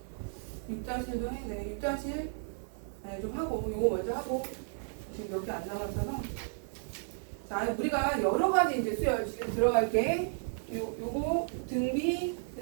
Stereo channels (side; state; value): left; silent; 56 dB below the other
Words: 6-1도 해야 돼. 6-1 좀 하고 요거 먼저 하고 지금 몇 개 안 남았어서. 자, 우리가 여러 가지 이제 수열 지금 들어갈게. 요거 등비, 그